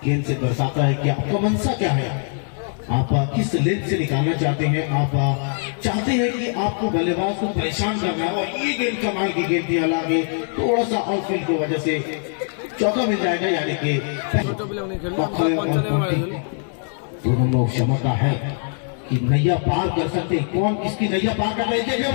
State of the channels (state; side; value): silent; right; 56 dB below the other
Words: गेंद से दर्शाता है कि आपका मनसा क्या है, आप किस लेंथ से निकालना चाहते हैं। आप चाहते हैं कि आपको बल्लेबाज को परेशान करना है, और ये गेंद कमाल की गेंद थी। हालांकि थोड़ा सा आउटफील्ड की वजह से चौका मिल जाएगा, यानी कि दोनों लोग क्षमता है कि नैया पार कर सकते हैं। कौन किसकी नैया पार कर रहे देखने